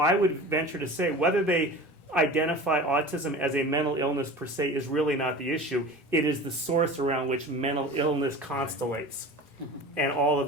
would venture to say whether they identify autism as a mental illness per se is really not the issue. It is the source around which mental illness constellates. and all of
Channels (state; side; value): normal; both; correlation 0.36